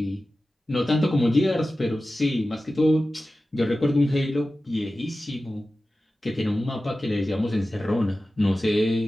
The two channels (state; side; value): normal; both; correlation 0.95